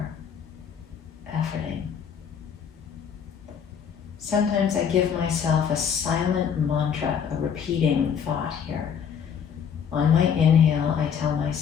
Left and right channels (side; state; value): right; quieter; 7.5 dB